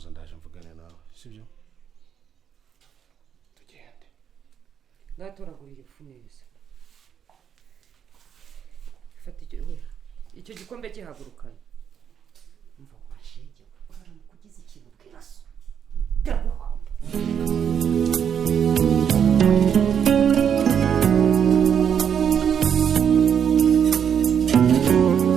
ndaje mvugane nawe, sibyo? Tugende. ngatoragurira ifu neza fata icyo gikombe gihagurukana umva washege uraramuka ugize ikintu bwiraso ndaguhamba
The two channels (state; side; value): quieter; left; 8.1 dB